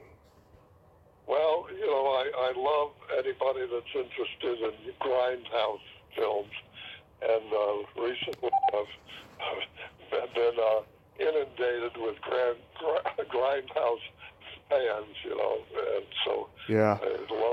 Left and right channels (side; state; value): both; identical; correlation 1.00